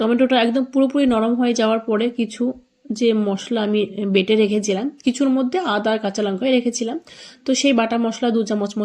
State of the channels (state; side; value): identical; both; correlation 1.00